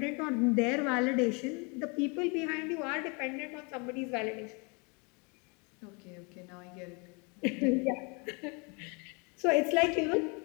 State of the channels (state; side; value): quieter; right; 31.9 dB